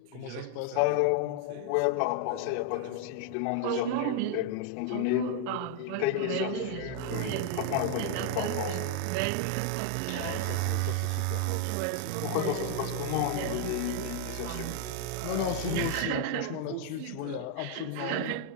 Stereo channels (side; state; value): both; different; correlation 0.00